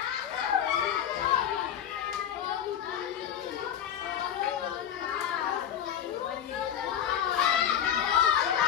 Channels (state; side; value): quieter; right; 9.5 dB